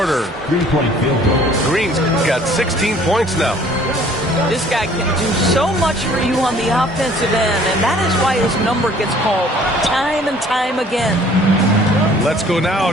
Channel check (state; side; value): normal; both; correlation 0.55